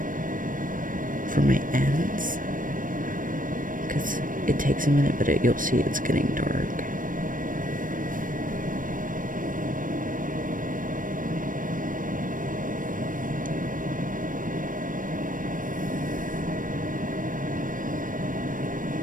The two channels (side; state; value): left; late; 0.39 ms